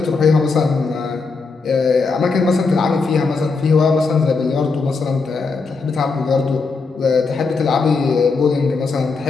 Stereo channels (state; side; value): quieter; right; 4.4 dB